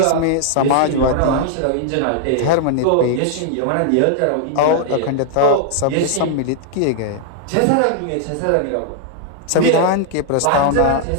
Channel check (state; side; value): different; both; correlation -0.01